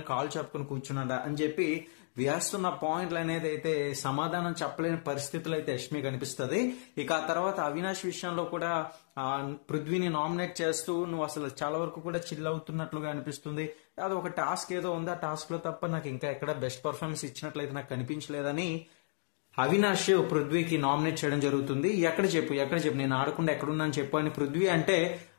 కాల్ చెప్పుకొని కూర్చున్నాడా అని చెప్పి వేస్తున్న పాయింట్లు అనేది అయితే సమాధానం చెప్పలేని పరిస్థితులు అయితే యష్మి కనిపిస్తుంది. ఇక ఆ తర్వాత అవినాష్ విషయంలో కూడా పృథ్వీని నామినేట్ చేస్తూ నువ్వు అసలు చాలా వరకు కూడా చిల్ అవుతున్నట్లుగా అనిపిస్తుంది, అది ఒక టాస్క్ ఏదో ఉంది, ఆ టాస్క్లో తప్ప నాకు ఇంకా ఎక్కడ బెస్ట్ పర్ఫార్మెన్స్ ఇచ్చినట్లయితే నాకు కనిపించలేదని అవినాష్ పృథ్వీకి నామినేట్ చేయడం జరుగుతుంది. ఎక్కడ చెప్పు నేను ఆడకుండా ఎక్కడున్నాను చెప్పు అని పృథ్వీ అంటే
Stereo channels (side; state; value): right; silent; digital silence